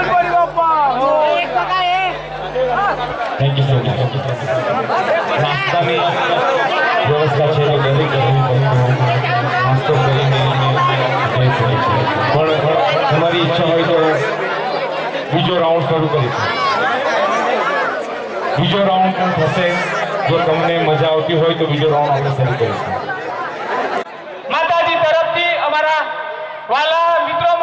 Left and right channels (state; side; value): identical; both; correlation 1.00